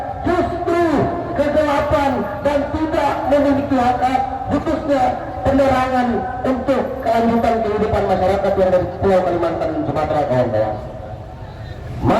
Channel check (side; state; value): both; identical; correlation 1.00